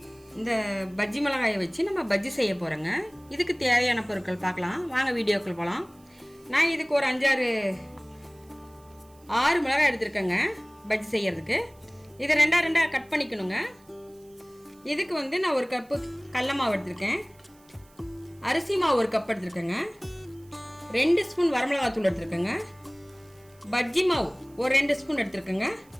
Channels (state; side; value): noise; right; hiss, 30 dB below the sound